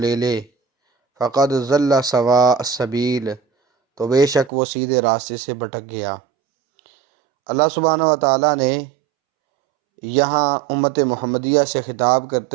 لے، فَقَدْ ضَلَّ سَوَاءَ السَّبِيلِ، تو بے شک وہ سیدھے راستے سے بھٹک گیا۔ اللہ سبحانہ و تعالیٰ نے یہاں امت محمدیہ سے خطاب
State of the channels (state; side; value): drops out; left; at 4.5 s